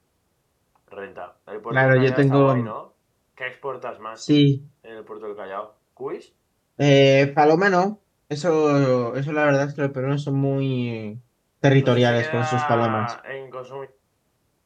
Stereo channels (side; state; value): both; identical; correlation 1.00